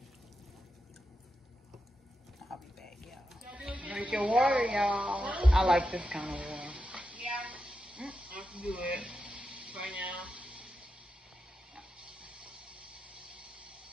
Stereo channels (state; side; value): normal; both; correlation 0.88